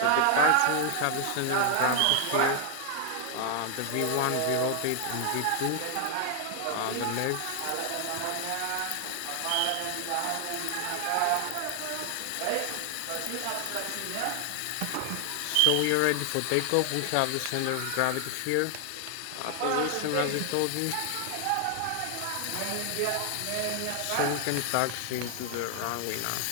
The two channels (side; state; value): both; different; correlation 0.00